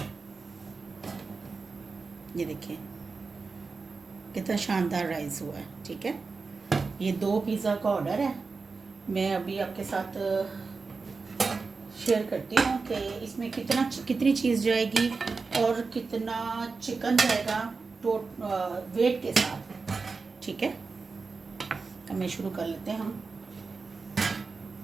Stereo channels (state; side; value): quieter; left; 4.4 dB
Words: ये देखिए कितना शानदार राइस हुआ है, ठीक है। ये 2 पिज़्ज़ा का ऑर्डर है। मैं अभी आपके साथ शेयर करती हूँ कि इसमें कितनी चीज़ जाएगी और कितना चिकन जाएगा वेट के साथ, ठीक है। अब मैं शुरू कर लेते हैं हम।